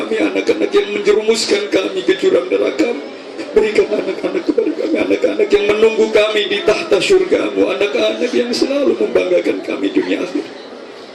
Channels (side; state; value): both; identical; correlation 1.00